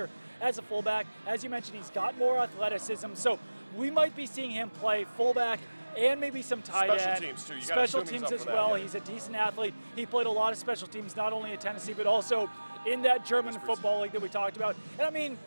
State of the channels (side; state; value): both; inverted; correlation -1.00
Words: as a fullback. As you mentioned, he's got more athleticism, so we might be seeing him play fullback and maybe some tight end. Special teams, too. Special teams as well. Yeah. He's a decent athlete. He played a lot of special teams, not only at Tennessee, but also in that German football league that we talked about. And I mean,